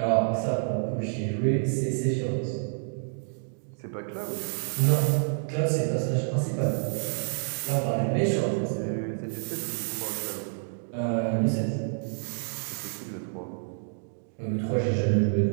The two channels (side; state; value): left; silent; digital silence